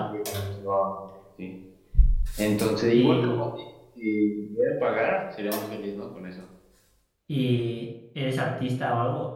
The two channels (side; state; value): both; identical; correlation 1.00